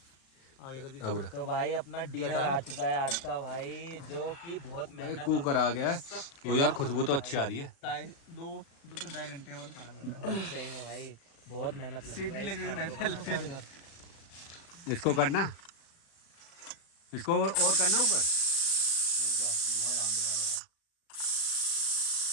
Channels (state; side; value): late; right; 37 ms